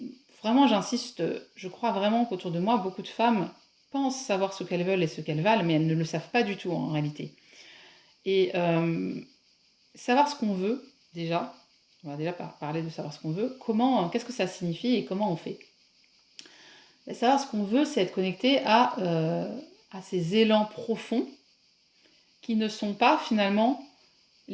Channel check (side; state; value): both; identical; correlation 1.00